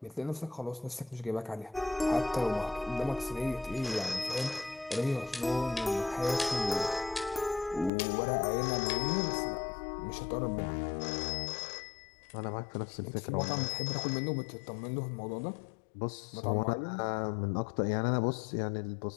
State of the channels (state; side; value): drops out; right; at 7.9 s